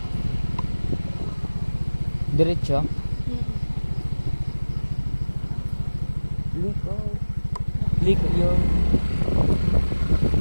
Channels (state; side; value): inverted; both; correlation -1.00